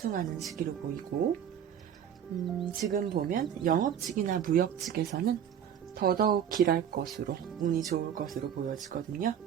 시기로 보이고 지금 보면 영업직이나 무역직에서는 더더욱 길할 것으로 운이 좋을 것으로 보여지거든요.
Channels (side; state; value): left; quieter; 9.0 dB